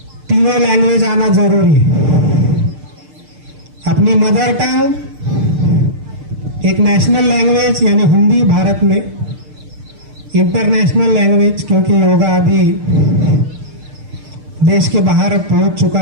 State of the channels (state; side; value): late; left; 6.6 ms